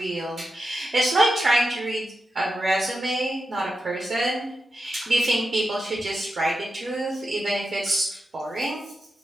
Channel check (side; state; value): both; normal; correlation 0.89